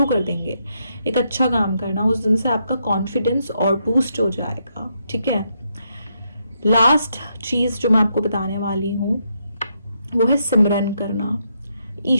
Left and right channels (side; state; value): both; inverted; correlation -0.79